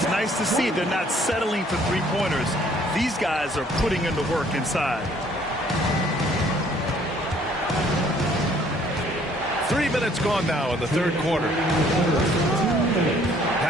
nice to see they're not settling for three-pointers. These guys are putting in the work inside. 3 minutes gone now in the third quarter.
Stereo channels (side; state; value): both; normal; correlation 0.60